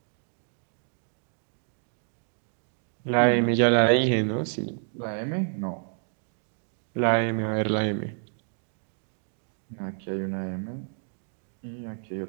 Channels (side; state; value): left; silent; 58 dB below the other